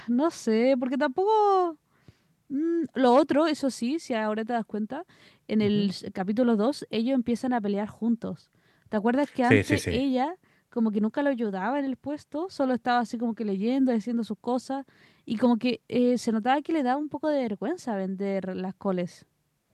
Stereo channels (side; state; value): both; identical; correlation 1.00